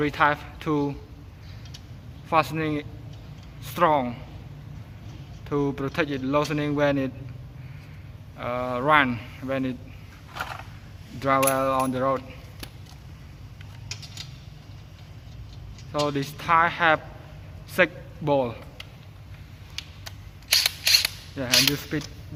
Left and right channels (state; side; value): identical; both; correlation 1.00